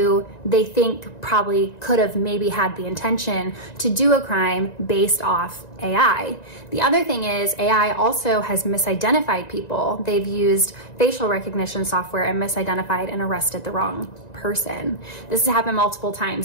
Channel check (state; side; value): late; right; 1.9 ms